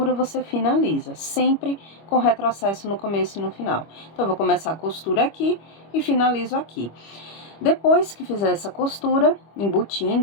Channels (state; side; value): late; right; 25 ms